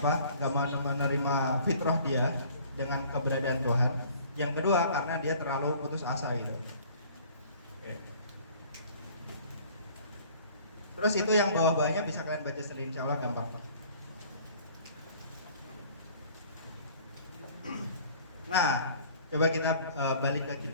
nggak mau menerima fitrah dia dengan keberadaan Tuhan. Yang kedua karena dia terlalu putus asa gitu. Oke. Terus itu yang bawah-bawahnya bisa kalian baca sendiri, insya Allah gampang. Nah, coba kita balik ke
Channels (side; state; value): both; inverted; correlation -0.52